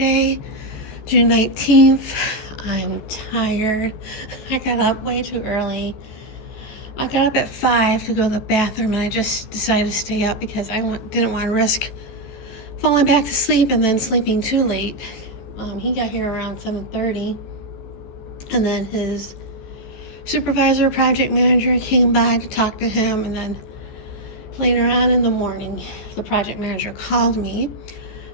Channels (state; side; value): late; right; 14 ms